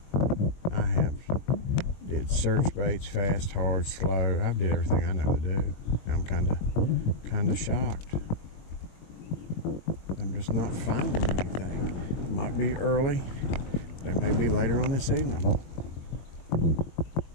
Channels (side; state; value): right; late; 22 ms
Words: I have did search baits, fast, hard, slow. I've did everything I know to do. I'm kind of shocked. I'm just not finding anything. It might be early. They may be later on this evening.